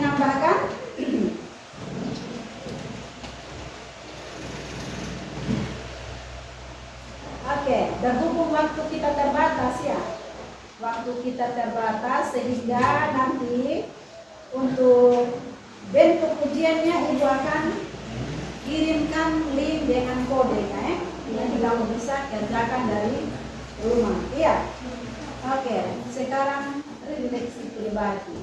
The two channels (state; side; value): identical; both; correlation 1.00